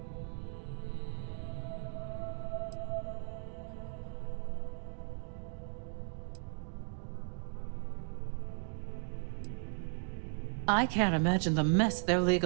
I can't imagine the mess their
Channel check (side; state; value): left; silent; 53 dB below the other